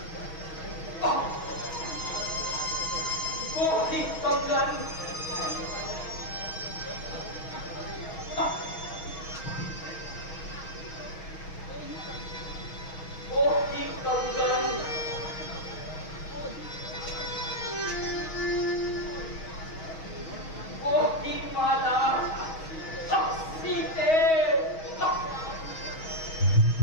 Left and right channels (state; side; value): late; right; 6.3 ms